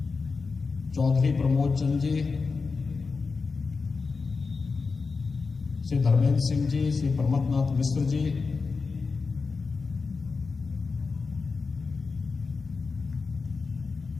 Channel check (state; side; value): quieter; right; 4.6 dB